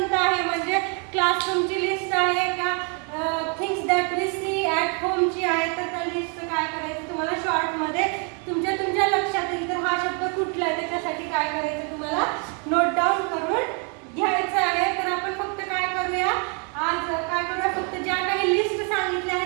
आहे, म्हणजे क्लासरूमची लिस्ट आहे का, things that we see at होमची आहे, तर त्या लिस्टचं काय करायचं तुम्हाला शॉर्ट मध्ये तुमच्या लक्षात येईल तर हा शब्द कुठला आहे त्याच्यासाठी काय करायचं तुम्हाला नोट डाऊन करून घ्यायचं आहे. तर आपण फक्त काय करूया, आज काय करूया, फक्त ज्या काही लिस्ट सांगितल्या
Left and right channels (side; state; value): left; quieter; 37.3 dB